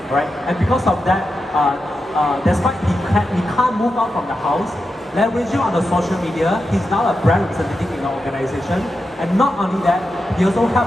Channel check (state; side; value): normal; both; correlation 0.89